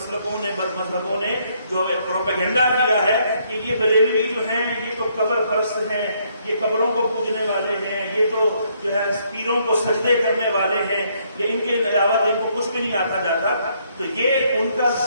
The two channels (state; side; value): inverted; both; correlation -0.70